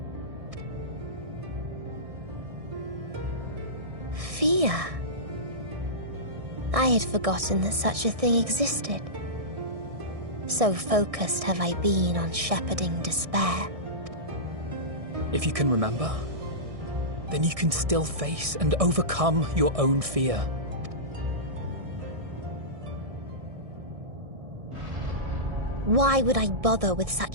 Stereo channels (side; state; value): left; late; 1.6 ms